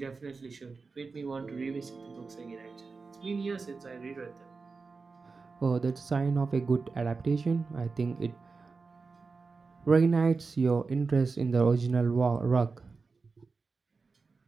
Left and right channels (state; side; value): quieter; left; 4.4 dB